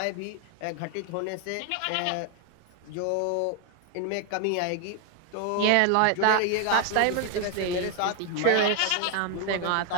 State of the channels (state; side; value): different; both; correlation 0.01